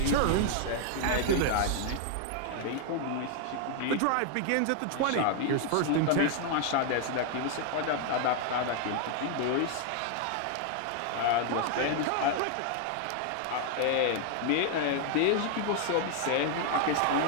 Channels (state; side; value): different; both; correlation 0.00